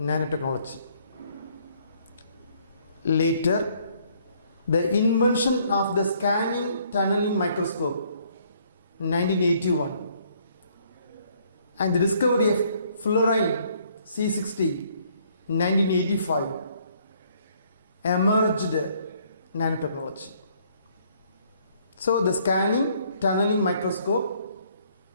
Later, the invention of the scanning tunneling microscope in 1981 and the discovery of fluorine C60 in 1985 emerged nanotechnology. So the scanning tunneling microscope,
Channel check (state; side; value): inverted; both; correlation -0.65